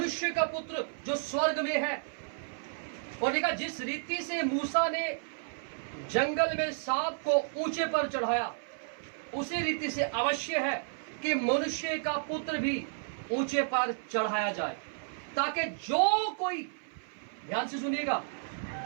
का पुत्र जो स्वर्ग में है। और देखा, जिस रीति से मूसा ने जंगल में सांप को ऊंचे पर चढ़ाया, उसी रीति से अवश्य है कि मनुष्य का पुत्र भी ऊंचे पर चढ़ाया जाए, ताकि जो कोई, ध्यान से सुनिएगा,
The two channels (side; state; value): left; silent; 55 dB below the other